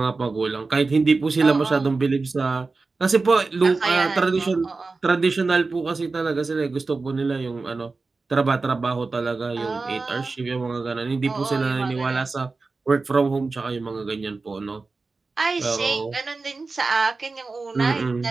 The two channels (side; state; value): left; quieter; 3.9 dB